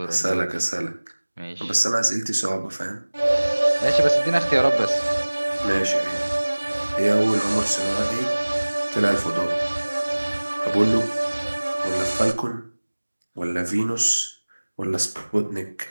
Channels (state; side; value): inverted; both; correlation -1.00